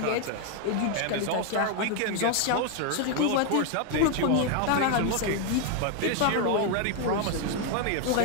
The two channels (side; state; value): both; different; correlation 0.01